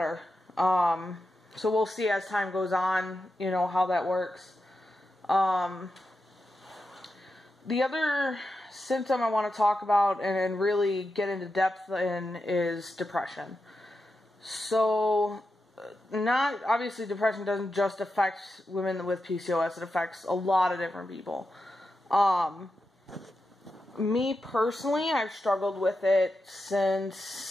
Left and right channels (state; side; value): normal; both; correlation 0.88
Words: So we'll see as time goes on, how that works. The other symptom I want to talk about and really get into depth in is depression. So, obviously depression doesn't just affect women with PCOS, it affects a lot of different people. Me personally, I've struggled with it